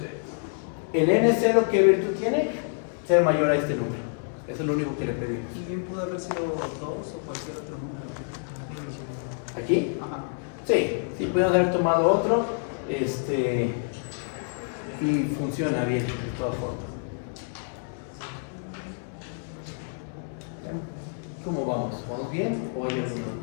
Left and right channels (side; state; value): right; silent; 60 dB below the other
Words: El n0, ¿qué virtud tiene? Ser mayor a este número. Eso es lo único que le pedimos. Y bien pudo haber sido 2 o cualquier otro número. ¿Aquí? Ajá. Sí, podemos haber tomado otro y funciona bien de todas formas. ¿Cómo vamos? ¿Vamos bien o hay alguna?